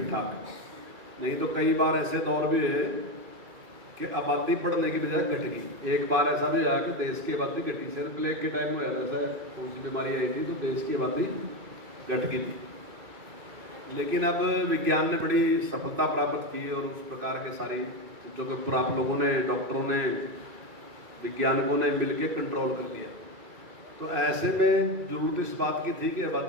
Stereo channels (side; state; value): left; late; 2.3 ms